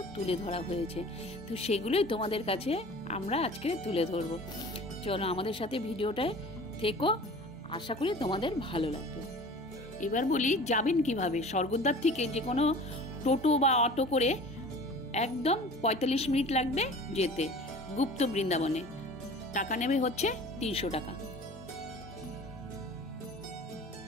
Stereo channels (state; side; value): normal; both; correlation 0.42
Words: তুলে ধরা হয়েছে। তো সেগুলোই তোমাদের কাছে আমরা আজকে তুলে ধরবো। চলো আমাদের সাথে ভিডিওটায় থেকো, আশা করি তোমাদের ভালো লাগবে। এবার বলি যাবেন কিভাবে। স্বর্গদ্বার থেকে যে কোনো টোটো বা অটো করে একদম 45 মিনিট লাগবে যেতে গুপ্ত বৃন্দাবনে। টাকা নেবে হচ্ছে 300 টাকা।